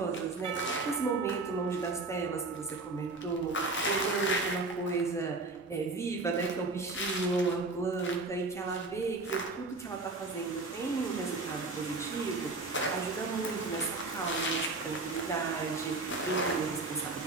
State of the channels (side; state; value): left; quieter; 3.3 dB